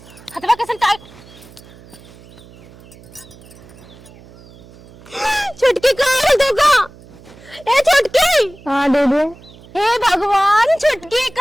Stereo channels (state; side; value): noise; right; hum, 22 dB below the sound